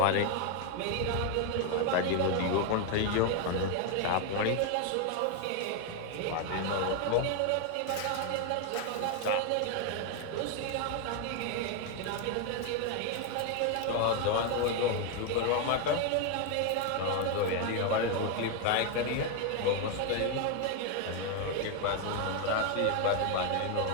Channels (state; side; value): different; both; correlation 0.01